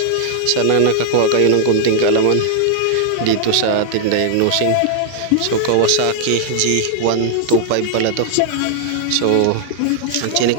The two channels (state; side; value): different; both; correlation 0.00